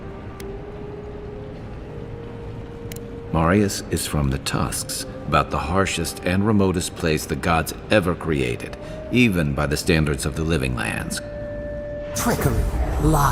Marius is from the Tusks, about the harshest and remotest place the gods ever created, even by the standards of the Living Lands. Trickery,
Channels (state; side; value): identical; both; correlation 1.00